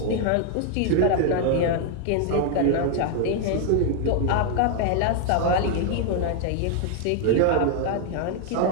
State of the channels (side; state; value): both; different; correlation 0.00